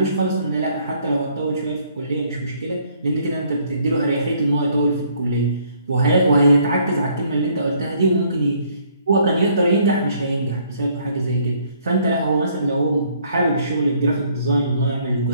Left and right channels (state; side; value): inverted; both; correlation -0.64